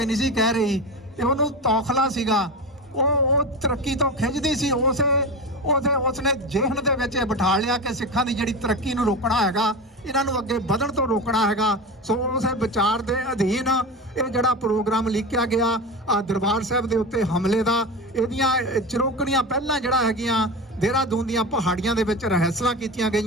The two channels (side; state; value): both; normal; correlation 0.24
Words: ਨਹੀਂ ਸੀ ਕਹਿ ਰਹੀ, ਤੇ ਉਹਨੂੰ ਤੌਖਲਾ ਸੀਗਾ। ਉਹ ਤਰੱਕੀ ਤੋਂ ਖਿੱਚਦੀ ਸੀ। ਉਸਨੇ ਜਿਹਨ ਦੇ ਵਿੱਚ ਇਹ ਬਿਠਾ ਲਿਆ ਕਿ ਸਿੱਖਾਂ ਦੀ ਜਿਹੜੀ ਤਰੱਕੀ ਨੂੰ ਰੋਕਣਾ ਹੈਗਾ, ਇਹਨਾਂ ਨੂੰ ਅੱਗੇ ਵਧਣ ਤੋਂ ਰੋਕਣਾ ਹੈਗਾ। ਸੋ ਉਸੇ ਵਿਚਾਰ ਦੇ ਅਧੀਨ ਇਹ ਜਿਹੜਾ ਪ੍ਰੋਗਰਾਮ ਲਿਖਿਆ ਗਿਆ ਦਰਬਾਰ ਸਾਹਿਬ ਦੇ ਉੱਤੇ ਹਮਲੇ ਦਾ, ਇਹਦੀਆਂ ਚਰੋਕਣੀਆਂ ਪਹਿਲਾਂ ਜਿਹੜਾ ਹੈਗੀਆਂ ਦੇਹਰਾਦੂਨ ਦੀਆਂ ਪਹਾੜੀਆਂ ਦੇ ਵਿੱਚ ਰਿਹਰਸਲਾਂ ਕੀਤੀਆਂ